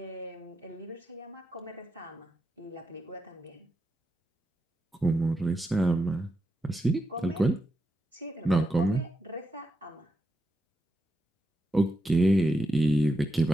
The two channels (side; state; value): both; normal; correlation 0.86